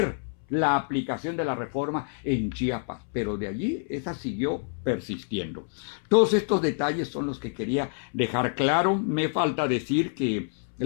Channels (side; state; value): right; silent; 60 dB below the other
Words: la aplicación de la reforma en Chiapas, pero de allí esa siguió persistiendo. Todos estos detalles son los que quería dejar claro. Me falta decir que